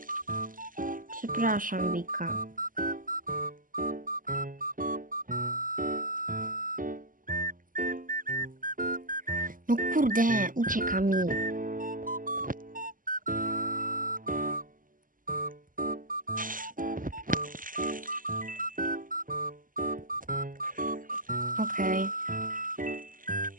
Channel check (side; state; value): left; late; 0.40 ms